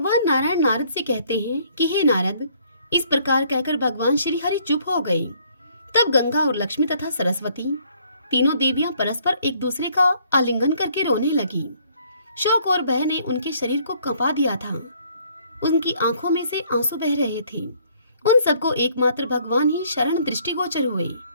नारायण नारद से कहते हैं कि हे नारद, इस प्रकार कहकर भगवान श्री हरि चुप हो गए। तब गंगा और लक्ष्मी तथा सरस्वती, तीनों देवियां परस्पर एक दूसरे का आलिंगन करके रोने लगी। शोक और भय ने उनके शरीर को कंपा दिया था। उनकी आंखों में से आंसू बह रहे थे। उन सबको एकमात्र भगवान ही शरण दृष्टिगोचर हुए।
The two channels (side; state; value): both; inverted; correlation -0.63